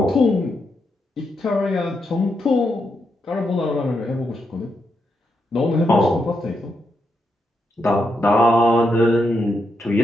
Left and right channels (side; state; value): both; normal; correlation 0.82